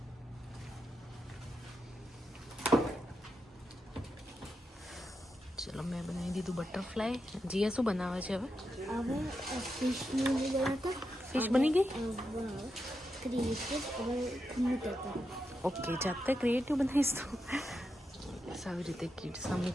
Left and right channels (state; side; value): normal; both; correlation 0.86